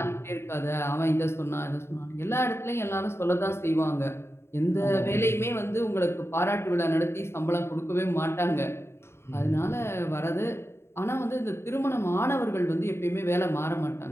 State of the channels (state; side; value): late; right; 0.12 ms